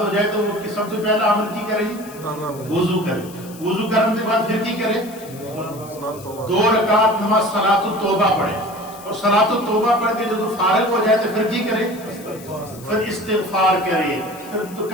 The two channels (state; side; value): noise; left; hiss, 19 dB below the sound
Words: ہو جائے تو وہ سب سے پہلا عمل کی کرے گی؟ وضو کرے، وضو کرنے کے بعد پھر کی کرے؟ 2 رکعت نماز صلاۃ التوبہ پڑھے، اور صلاۃ التوبہ پڑھ کے جب فارغ ہو جائے تو پھر کی کرے؟ پھر استغفار کرے، پھر